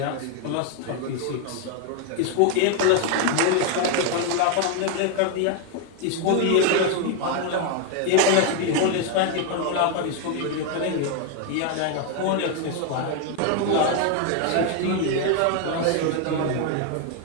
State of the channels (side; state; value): both; different; correlation 0.01